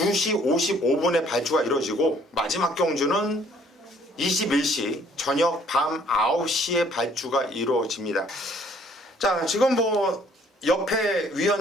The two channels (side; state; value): both; normal; correlation 0.60